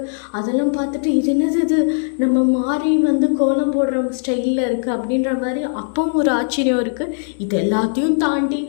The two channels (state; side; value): silent; right; digital silence